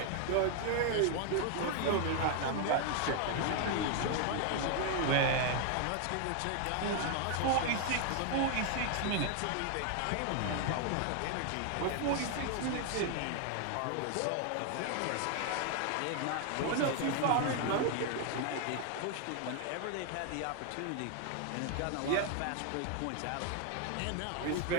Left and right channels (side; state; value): both; different; correlation 0.00